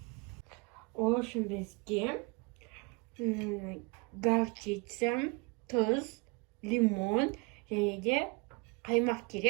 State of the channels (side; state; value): left; quieter; 28.9 dB